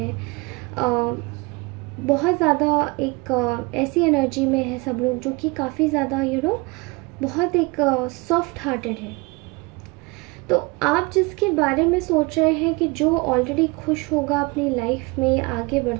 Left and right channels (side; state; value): left; quieter; 26.2 dB